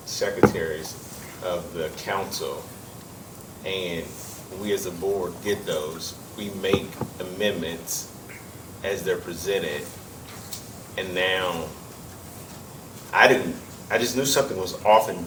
secretaries of the council, and we as a board get those. We make amendments as they're presented, and now, I just knew something was off and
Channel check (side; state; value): both; identical; correlation 1.00